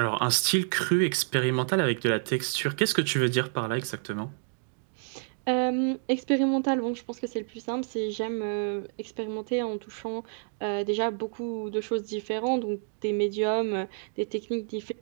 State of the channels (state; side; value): silent; left; 59 dB below the other